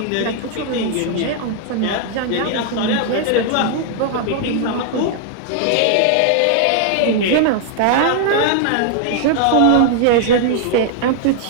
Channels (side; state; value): both; different; correlation 0.00